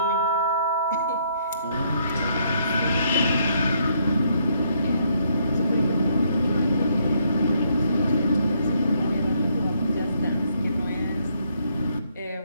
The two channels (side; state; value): both; inverted; correlation -0.72